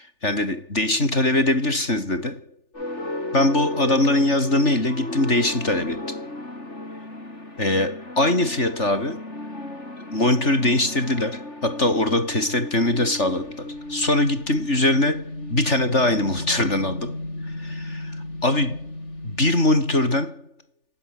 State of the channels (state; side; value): late; right; 3.4 ms